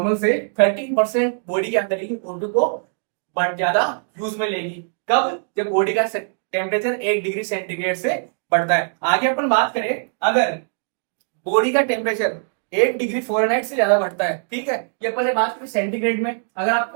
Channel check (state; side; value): silent; left; digital silence